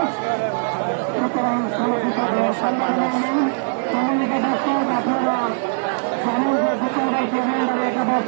মানুষ আর মানুষ।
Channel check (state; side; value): silent; left; digital silence